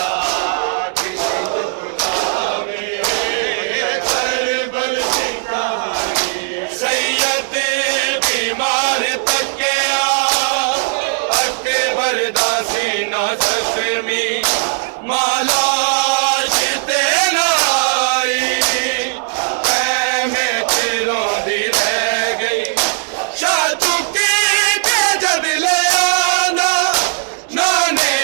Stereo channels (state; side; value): silent; left; digital silence